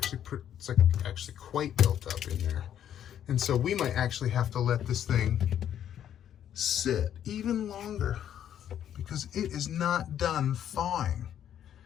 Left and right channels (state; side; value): quieter; right; 10.1 dB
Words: actually quite built up in there. And so we might actually have to let this thing sit even longer because it is not done thawing.